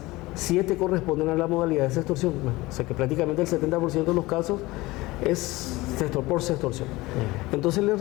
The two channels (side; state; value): right; quieter; 20.4 dB